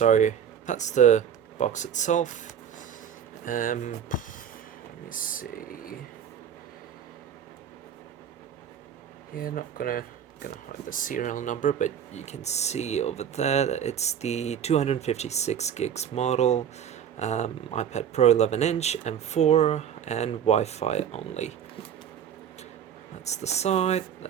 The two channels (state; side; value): quieter; left; 8.7 dB